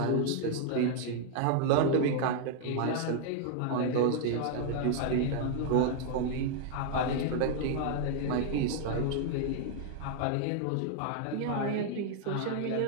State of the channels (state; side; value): different; both; correlation 0.00